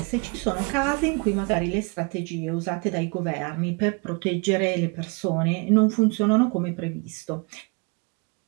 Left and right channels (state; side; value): quieter; left; 31.1 dB